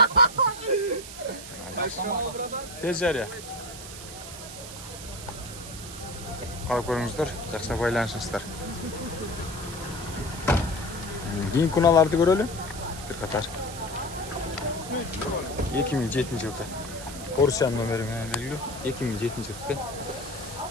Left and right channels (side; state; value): right; noise; hiss, 12 dB below the sound